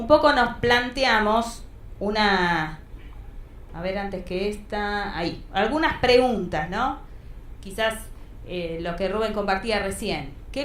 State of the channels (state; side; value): identical; both; correlation 1.00